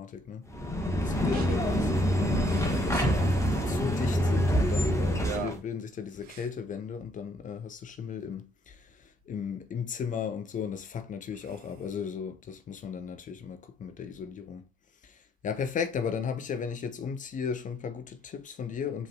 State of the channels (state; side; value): normal; both; correlation 0.69